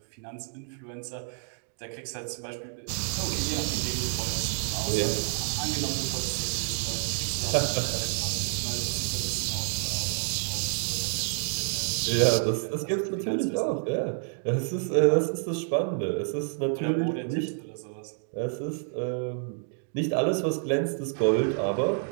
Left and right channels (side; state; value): left; silent; digital silence